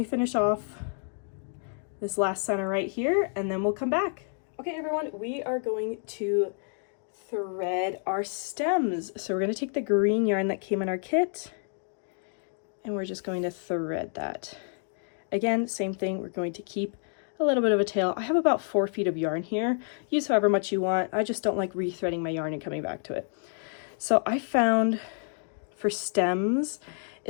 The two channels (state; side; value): silent; right; 57 dB below the other